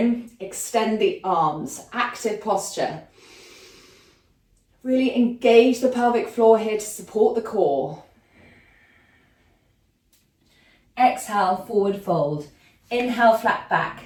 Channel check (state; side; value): identical; both; correlation 1.00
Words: extend the arms, active posture. Really engage the pelvic floor here to support the core. Exhale, forward fold. Inhale, flat back.